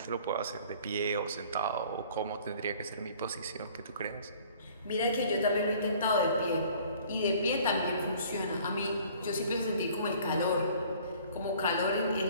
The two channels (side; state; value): both; inverted; correlation -0.52